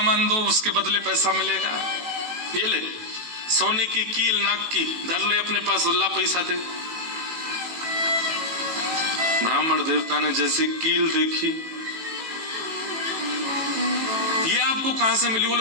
दो उसके बदले पैसा मिलेगा, ये ले सोने की कील नाक की धर ले अपने पास, ला पैसा दे। ब्राह्मण देवता ने जैसे कील देखी, ये आपको कहां से मिली?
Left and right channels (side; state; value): left; late; 18 ms